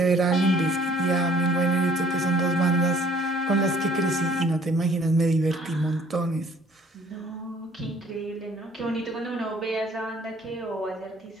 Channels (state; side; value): normal; both; correlation 0.57